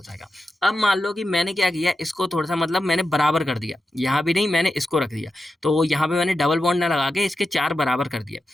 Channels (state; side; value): normal; both; correlation 0.90